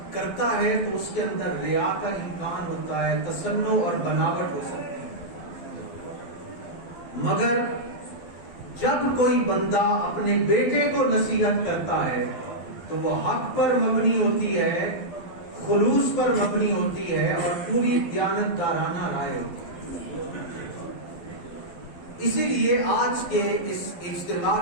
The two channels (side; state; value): right; late; 12 ms